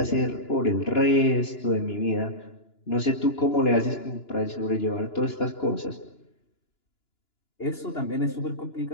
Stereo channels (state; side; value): late; right; 2.9 ms